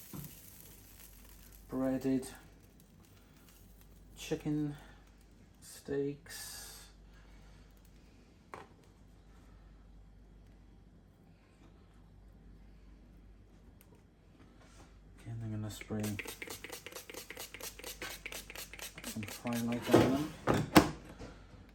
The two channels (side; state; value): both; identical; correlation 1.00